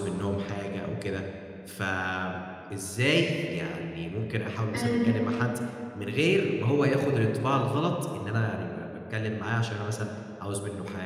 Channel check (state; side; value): identical; both; correlation 1.00